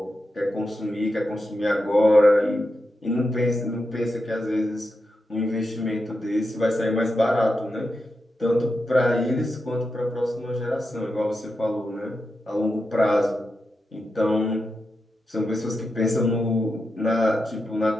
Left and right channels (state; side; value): normal; both; correlation 0.88